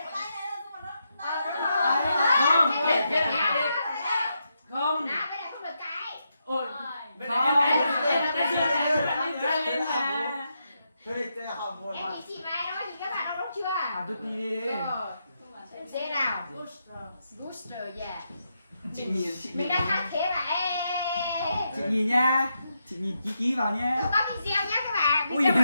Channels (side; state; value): both; inverted; correlation -0.83